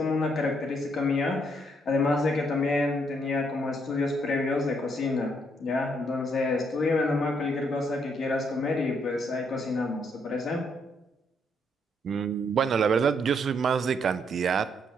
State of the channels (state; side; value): normal; both; correlation 0.73